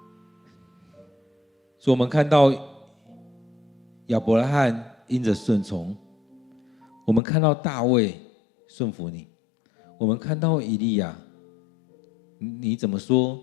所以我们看到亚伯拉罕因着顺从，我们看到大卫顺服你，我们看到以利亚，你怎么说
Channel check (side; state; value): right; drops out; at 7.2 s